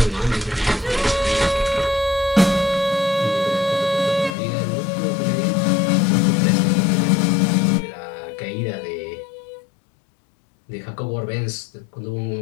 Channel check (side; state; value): right; drops out; at 4.4 s